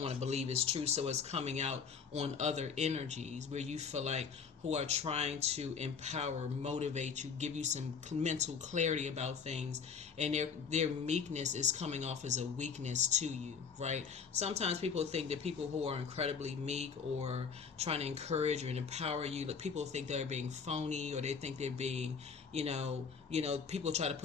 want to believe it's true, so it's coming out on other energies where you feel like who are trying to empower, motivate you, give you some mental clarity about things, and their meekness is coming off as a weakness to you, right? Sometimes people think that people who are incredibly meek or trying to encourage and empower you, like people think they're being phony, or they think they're being, people try to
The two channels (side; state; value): right; quieter; 6.0 dB